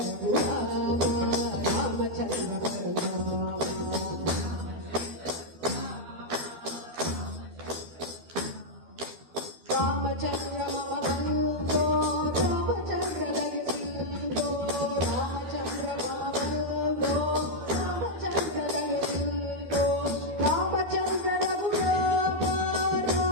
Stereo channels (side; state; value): left; late; 12 ms